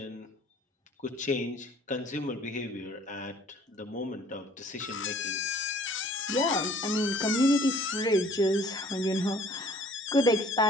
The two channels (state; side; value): normal; both; correlation 0.54